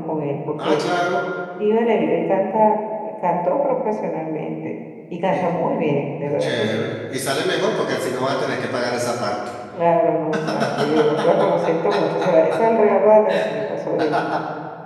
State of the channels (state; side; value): identical; both; correlation 1.00